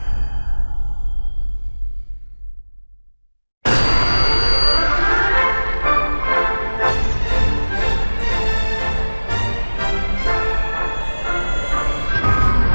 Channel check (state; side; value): inverted; both; correlation -1.00